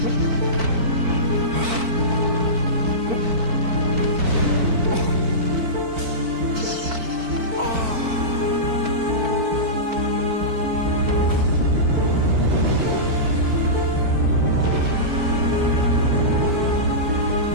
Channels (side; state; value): left; late; 4.5 ms